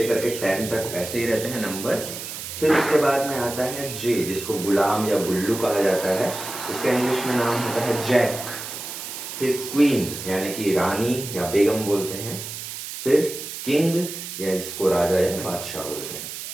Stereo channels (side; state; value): right; noise; hiss, 8 dB below the sound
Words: के 10 तक ऐसे ही रहते हैं नंबर्स। फिर उसके बाद में आता है जे, जिसको गुलाम या गुल्लू कहा जाता है, उसका इंग्लिश में नाम होता है जैक। फिर क्वीन, यानी कि रानी या बेगम बोलते हैं। फिर किंग, या इसको राजा या बादशाह बोलते हैं।